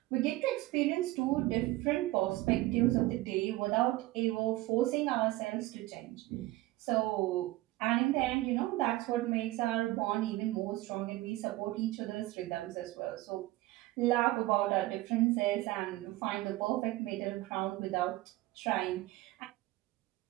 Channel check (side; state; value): left; quieter; 18.1 dB